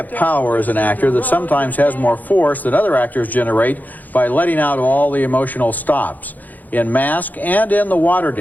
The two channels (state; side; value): late; right; 0.083 ms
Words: power as an actor that sometimes has more force than other actors generate by letting out all the emotional stops. In Mask and in The